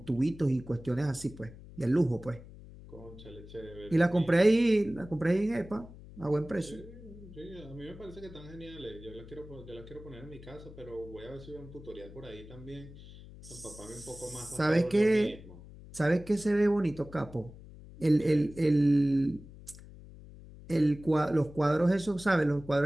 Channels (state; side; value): noise; left; hum, 17 dB below the sound